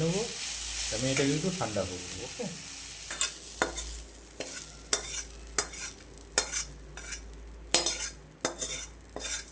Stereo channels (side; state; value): both; identical; correlation 1.00